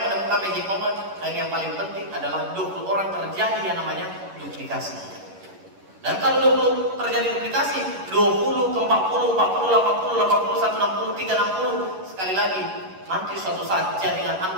menemukan magic moment, dan yang paling penting adalah 20 orang terjadi yang namanya duplikasi. Dan kalau 20 terjadi duplikasi, 20 ke 40, 40, 80, 80, 160, 360, sekali lagi, nanti suatu saat jaringan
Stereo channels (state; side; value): late; left; 11 ms